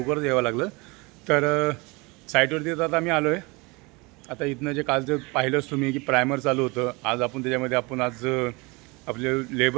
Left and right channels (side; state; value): left; quieter; 26.3 dB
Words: यावं लागलं. तर साईटवरती आता आम्ही आलो आहे. आता इथनं जे कालचं पाहिलंच तुम्ही की प्रायमर चालू होतं. आज आपण त्याच्यामध्ये आज आपले